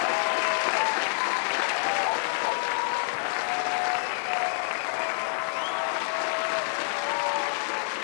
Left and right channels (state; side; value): silent; right; 60 dB below the other